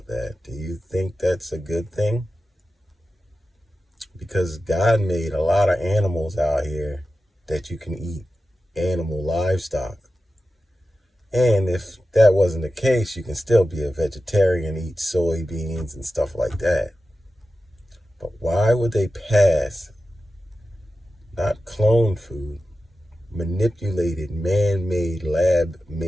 that? Do you think that's a good thing? Because God made a lot of animals out here that you can eat, animal livestock. And if that wasn't the case, you can still be a vegetarian, eat soybeans and stuff like that. But why would they pass not cloned food, manipulated, man made, lab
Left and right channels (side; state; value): both; normal; correlation 0.93